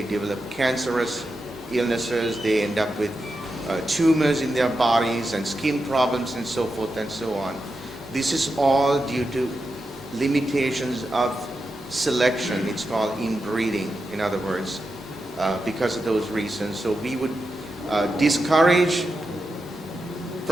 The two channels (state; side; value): normal; both; correlation 0.88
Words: developed cancerous illnesses. They end up with tumors in their bodies and skin problems and so forth and so on. This is all due to limitations of selection. It's called inbreeding, in other words, because of those reasons. So we would discourage